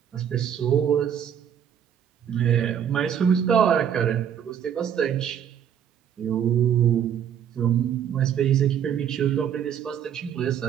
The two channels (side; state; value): left; quieter; 8.9 dB